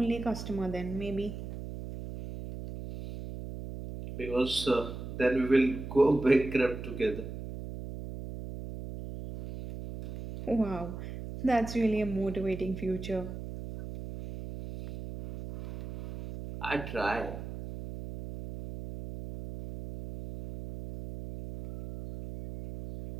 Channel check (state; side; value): noise; right; hum, 9 dB below the sound